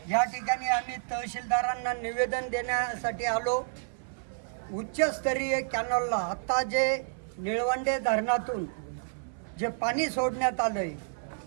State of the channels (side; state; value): left; silent; 58 dB below the other